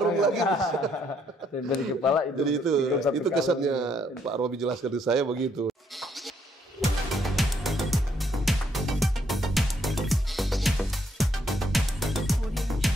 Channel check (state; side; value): normal; both; correlation 0.71